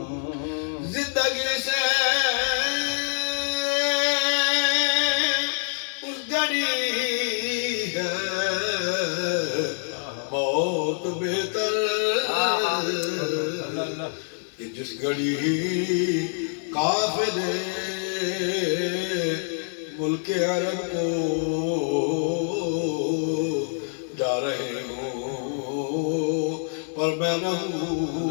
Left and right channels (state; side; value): silent; right; 60 dB below the other